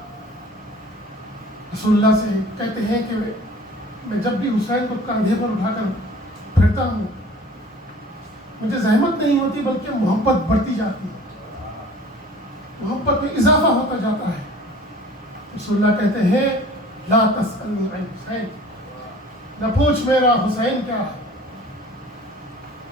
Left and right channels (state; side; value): normal; both; correlation 0.47